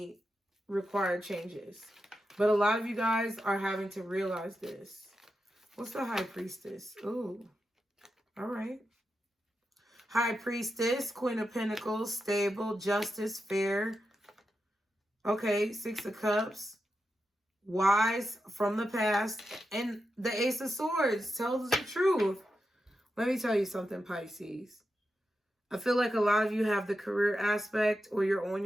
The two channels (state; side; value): normal; both; correlation 0.88